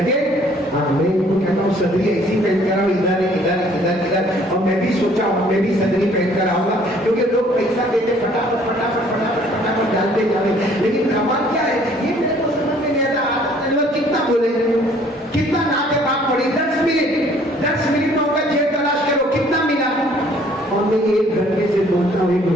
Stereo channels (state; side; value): normal; both; correlation 0.58